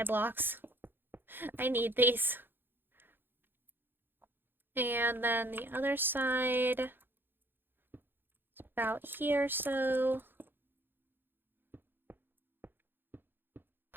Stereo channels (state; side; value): late; left; 0.10 ms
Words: blocks. I need these. And then the other side... It's about here, so...